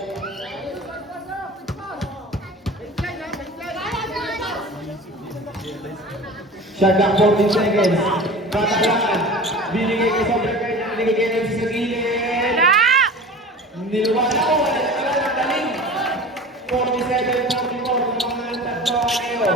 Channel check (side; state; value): both; normal; correlation 0.37